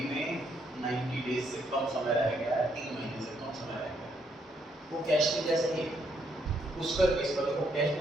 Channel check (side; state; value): both; normal; correlation 0.74